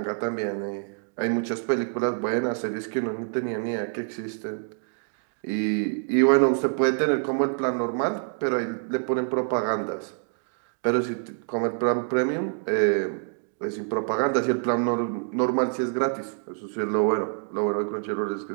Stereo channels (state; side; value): silent; left; 57 dB below the other